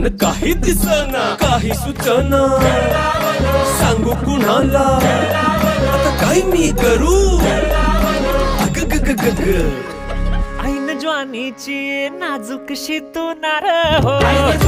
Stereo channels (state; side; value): identical; both; correlation 1.00